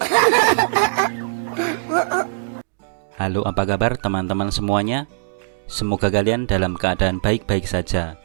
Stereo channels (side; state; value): left; silent; digital silence